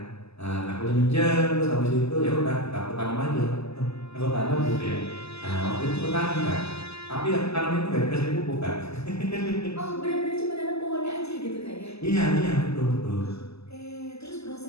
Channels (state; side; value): late; right; 0.79 ms